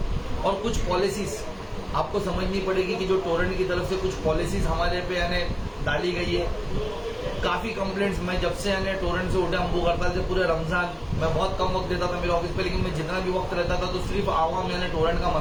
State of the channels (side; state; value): both; identical; correlation 1.00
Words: और कुछ पॉलिसीज आपको समझनी पड़ेगी कि जो टोरेंट की तरफ से कुछ पॉलिसीज हमारे पे डाली गई है। काफी कंप्लेंट्स मैं जब से टोरेंट से उठे हम भूख हड़ताल से पूरे रमजान मैं बहुत कम वक्त देता था मेरे ऑफिस पे, लेकिन मैं जितना भी वक्त रहता था तो सिर्फ आवाम टोरेंट का